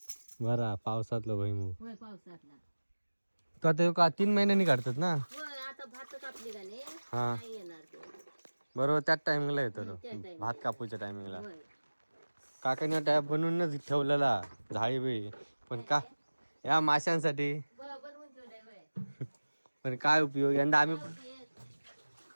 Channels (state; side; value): inverted; both; correlation -1.00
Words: बरा पावसातलं भैमू. होय पावसातला. तो आता ह्यो का 3 महिन्यांनी काढतात ना? होय आता भात कापली गाणे हा नाही येणार ते. बरोबर त्याच टायमिंगला येतो तो. त्या time भात कापूच्या टायमिंगला. होय काकाने टॅप बनवूनच ठेवलेला झाडी बी. पण का या माशांसाठी. बनवून ठेवलंय होय. पण काय उपयोग यंदा